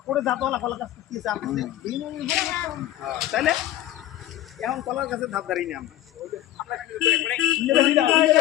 জাতওয়ালা কলা গাছ তাইলে এখন কলার গাছের ধাপ দাঁড়িয়ে আমরা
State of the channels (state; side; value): quieter; right; 13.7 dB